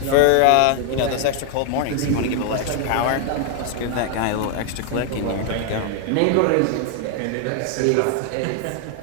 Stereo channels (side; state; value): both; different; correlation 0.00